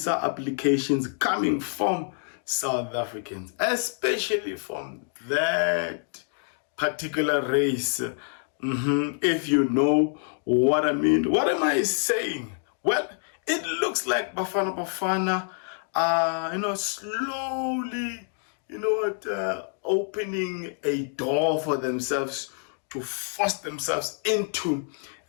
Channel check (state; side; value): silent; right; 56 dB below the other